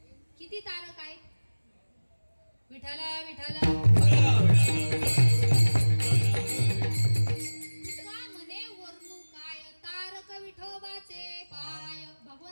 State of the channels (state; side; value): inverted; both; correlation -1.00